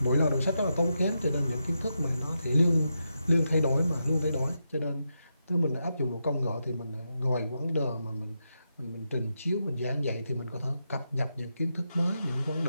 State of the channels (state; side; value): inverted; both; correlation -0.85